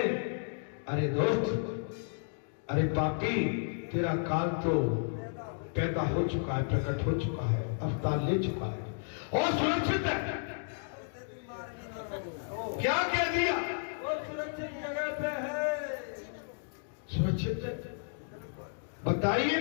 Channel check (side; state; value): right; silent; digital silence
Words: अरे दोस्त, अरे पापी तेरा काल तो पैदा हो चुका है, प्रकट हो चुका है, अवतार ले चुका है और सुरक्षित है। क्या कह दिया? और सुरक्षित जगह पे है। सुरक्षित है? बताइए।